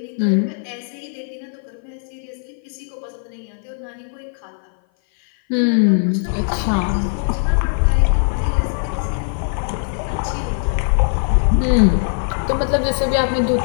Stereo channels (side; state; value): right; silent; 56 dB below the other